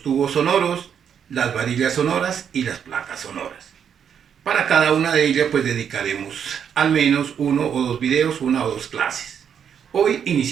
tubos sonoros, las varillas sonoras y las placas sonoras. Para cada una de ellas pues dedicaremos al menos uno o dos videos, una o dos clases. Hoy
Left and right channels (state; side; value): quieter; left; 8.0 dB